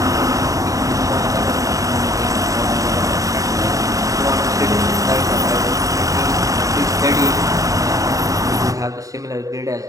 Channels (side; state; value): left; late; 0.16 ms